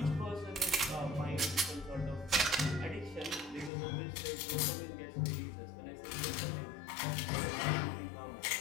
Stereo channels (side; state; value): right; drops out; at 3.7 s